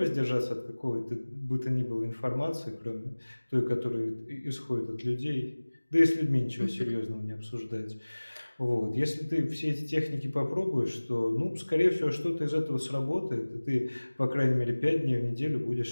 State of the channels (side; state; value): both; inverted; correlation -1.00